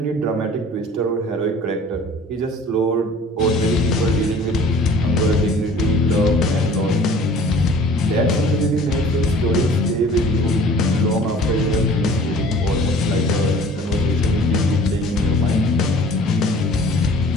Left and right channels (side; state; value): both; normal; correlation 0.48